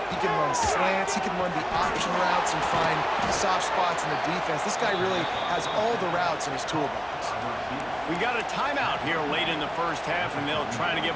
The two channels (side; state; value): both; identical; correlation 1.00